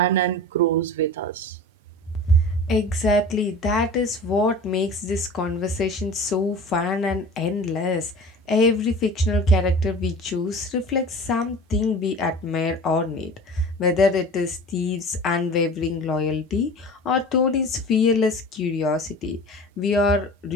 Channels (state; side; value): normal; both; correlation 0.38